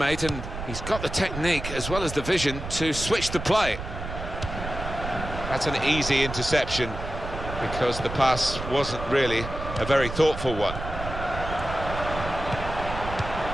and he's got the technique as well as the vision to switch the play. That's an easy interception because the pass wasn't really a very thoughtful one.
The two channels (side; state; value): right; noise; rumble, 8 dB below the sound